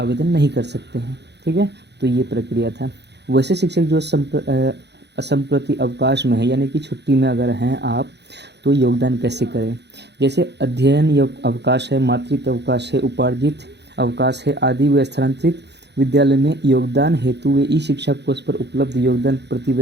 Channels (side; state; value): left; late; 0.50 ms